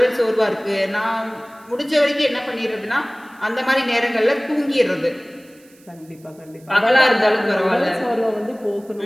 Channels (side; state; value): right; noise; hiss, 29 dB below the sound